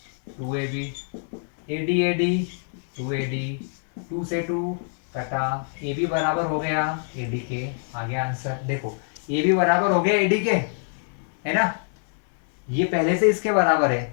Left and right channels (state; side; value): silent; right; 59 dB below the other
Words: 2AB, AD AD 2AD, 2 से 2 कटा, AB बराबर हो गया AD के, आ गया आंसर। देखो AB बराबर हो गया AD के, है ना, ये पहले से इसके बराबर